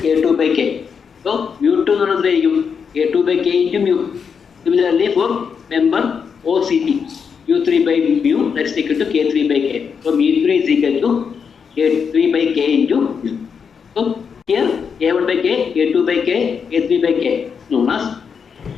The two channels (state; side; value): quieter; right; 6.4 dB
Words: K2 by K. So mu2 എന്ന് പറയുന്നത് എത്രയായിരിക്കും? K2 by K into mu. Similarly for member OCP. mu3 by mu, that's equal to K3 by K. So mu3 is equal to K3 by K into mu. So here K1 by K, K2 by K, K3 by K is known as